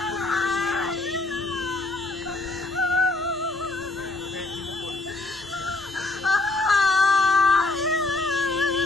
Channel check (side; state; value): right; quieter; 3.0 dB